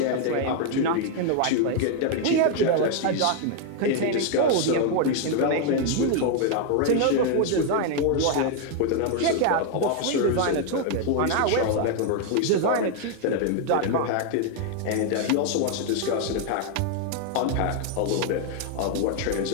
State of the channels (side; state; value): both; different; correlation 0.00